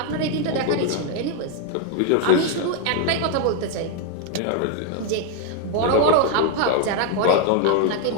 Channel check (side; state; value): both; different; correlation 0.00